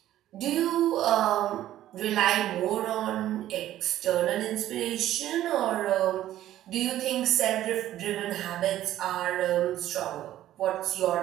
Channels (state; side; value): quieter; left; 13.2 dB